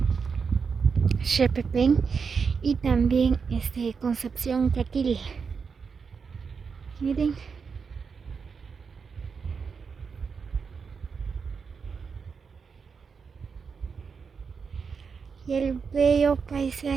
Xepepén y también Concepción Caquil. Miren. Y el bello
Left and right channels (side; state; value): left; quieter; 5.7 dB